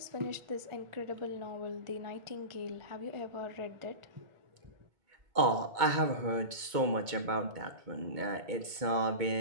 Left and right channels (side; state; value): left; late; 2.2 ms